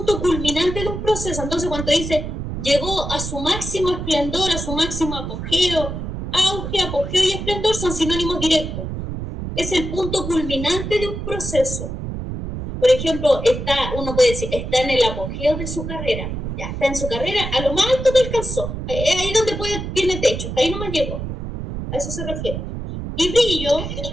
culminante de un proceso. Entonces cuando dice llegó a su máximo esplendor, a su máximo apogeo, auge, apogeo y esplendor son sinónimos directos. Es el punto culminante de un proceso. Por ejemplo, uno puede decir, está en el apogeo de su carrera. Ya está en su carrera, a lo más alto que alcanzó. Ahí donde tiene techo, hasta ahí nomás llegó. A eso se refiere. Y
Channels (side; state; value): right; noise; rumble, 6 dB below the sound